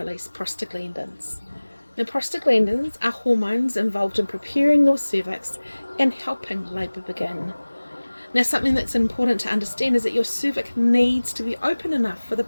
prostaglandins. Now, prostaglandins are hormones involved in preparing your cervix and helping labour begin. Now, something that's important to understand is that your cervix needs to be open enough for the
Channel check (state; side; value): inverted; both; correlation -1.00